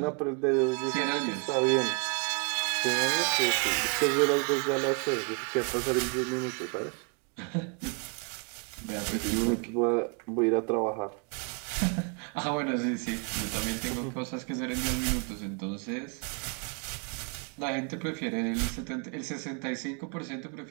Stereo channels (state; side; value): quieter; left; 37.2 dB